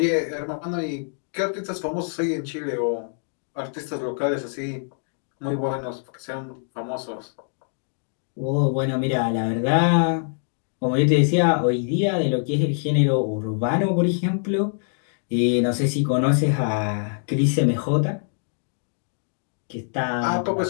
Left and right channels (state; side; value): silent; right; digital silence